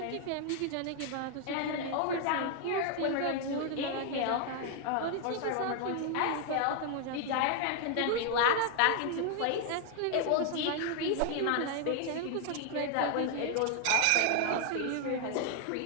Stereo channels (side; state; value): both; different; correlation 0.00